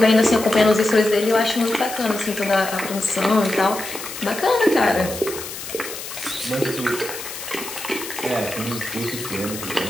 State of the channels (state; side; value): noise; left; hiss, 10 dB below the sound